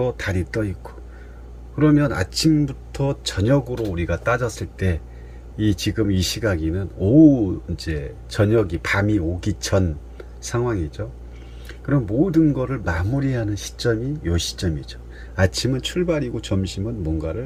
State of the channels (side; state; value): both; identical; correlation 1.00